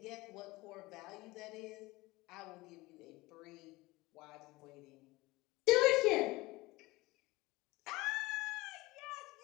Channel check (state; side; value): quieter; right; 21.0 dB